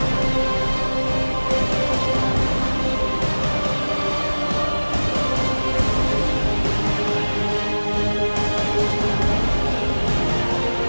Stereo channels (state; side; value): inverted; both; correlation -1.00